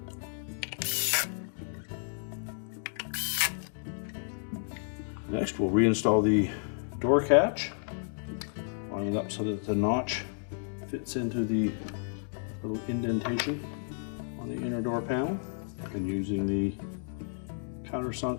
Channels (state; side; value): silent; right; digital silence